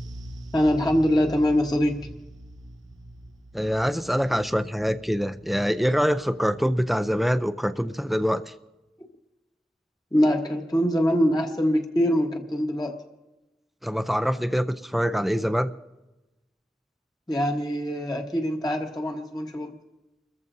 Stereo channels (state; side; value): normal; both; correlation 0.94